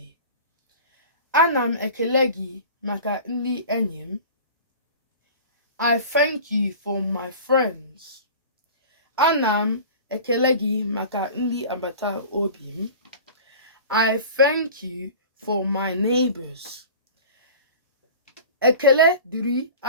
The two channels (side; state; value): both; inverted; correlation -0.39